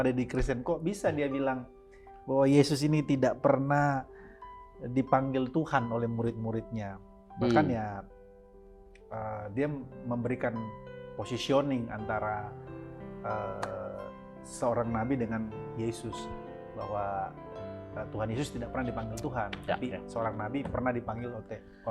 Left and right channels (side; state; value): both; identical; correlation 1.00